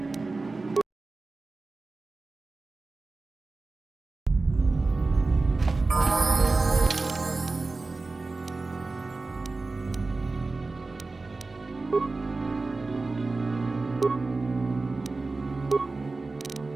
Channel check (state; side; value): quieter; left; 3.6 dB